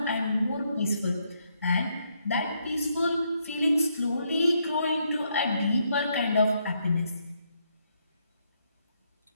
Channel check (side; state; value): both; inverted; correlation -0.76